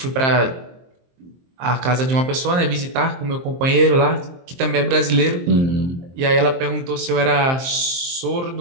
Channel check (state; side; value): late; left; 23 ms